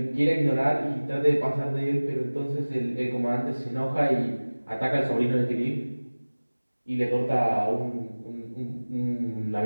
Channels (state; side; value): inverted; both; correlation -1.00